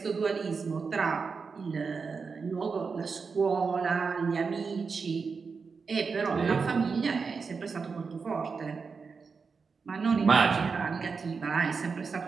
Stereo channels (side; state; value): left; quieter; 5.1 dB